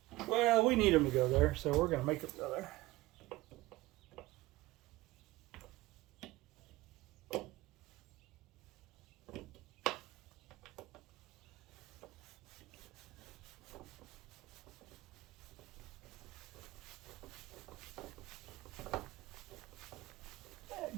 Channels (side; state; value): left; quieter; 18.8 dB